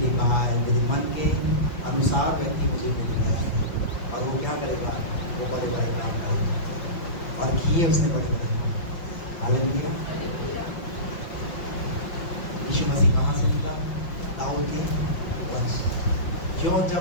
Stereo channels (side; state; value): right; late; 5.6 ms